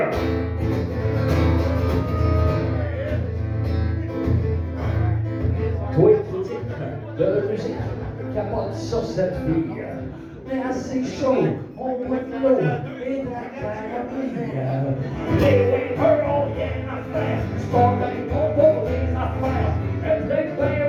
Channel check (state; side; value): identical; both; correlation 1.00